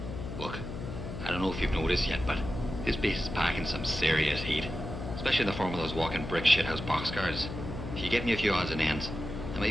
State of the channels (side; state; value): left; noise; hum, 7 dB below the sound